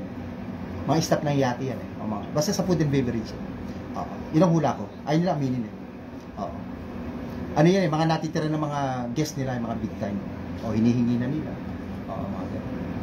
Mga staff ng yate yan. Basta sa food and beverage. Oo. Yun ang hula ko. Ayun nila aminin eh. Oo. Ano yan eh, mga natitira ng mga guest nila, yung mga big time. O hinihingi na nila. Oo, mga ganun.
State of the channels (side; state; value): both; identical; correlation 1.00